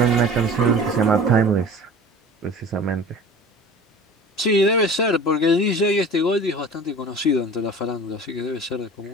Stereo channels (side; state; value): both; normal; correlation 0.40